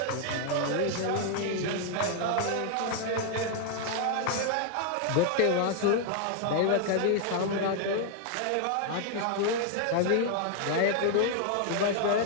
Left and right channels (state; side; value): different; both; correlation 0.00